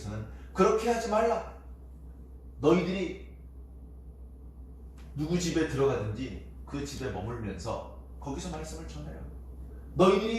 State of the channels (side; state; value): both; identical; correlation 1.00